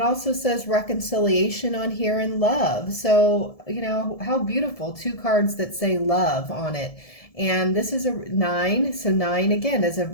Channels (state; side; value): late; right; 1.7 ms